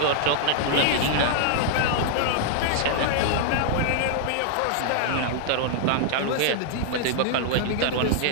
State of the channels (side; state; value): both; different; correlation -0.01